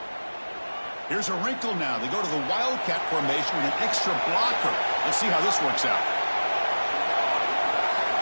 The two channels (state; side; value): inverted; both; correlation -1.00